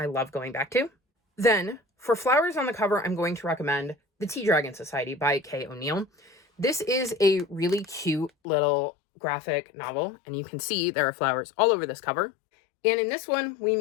love going back to. Then, for flowers on the cover, I'm going to recommend The Tea Dragon Society by Kay O'Neill. This is a really cute little graphic novel. And you can see there are flowers all over this cover. And in this one, we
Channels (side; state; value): right; drops out; at 8.3 s